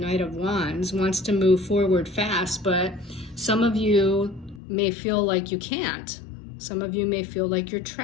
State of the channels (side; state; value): right; drops out; at 4.6 s